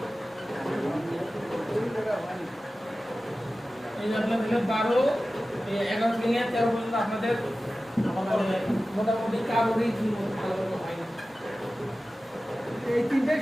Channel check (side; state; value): both; normal; correlation 0.95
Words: এই যে আপনারা দিলেন 12 এই 11 থেকে নিয়ে 13 পর্যন্ত আপনাদের মোটামুটি কারোরই ভালো হয় না। এই তিনটাই